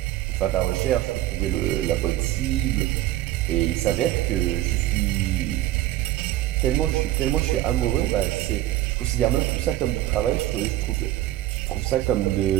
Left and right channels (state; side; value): quieter; left; 15.0 dB